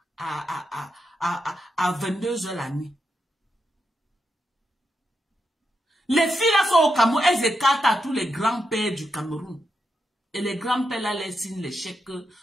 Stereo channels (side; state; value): both; normal; correlation 0.84